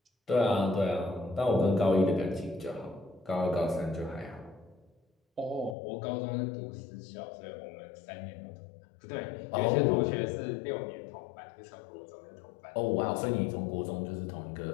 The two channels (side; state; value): right; drops out; at 5.8 s